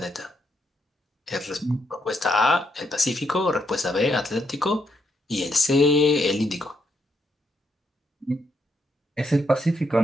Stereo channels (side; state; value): both; normal; correlation 0.77